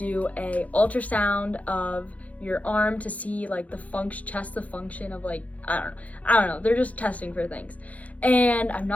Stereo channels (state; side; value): late; right; 0.068 ms